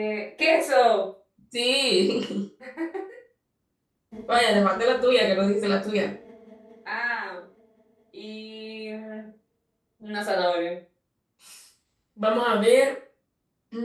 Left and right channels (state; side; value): identical; both; correlation 1.00